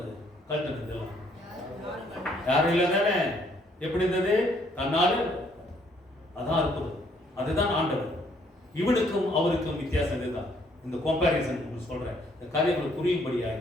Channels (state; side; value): normal; both; correlation 0.66